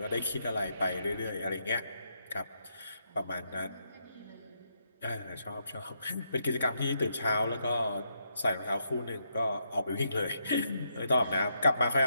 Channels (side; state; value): both; inverted; correlation -0.79